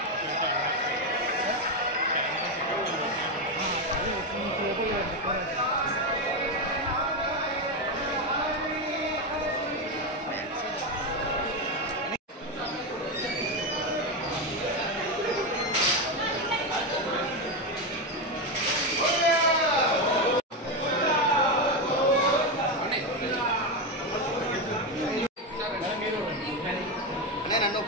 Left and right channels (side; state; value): both; normal; correlation 0.11